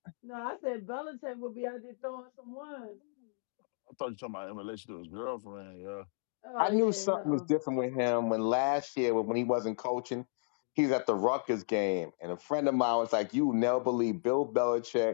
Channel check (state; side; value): silent; right; digital silence